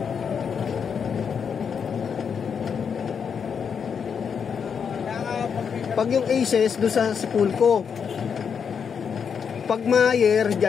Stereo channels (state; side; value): quieter; right; 6.8 dB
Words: Pag yung Aces doon sa Sepulco, pag Mayer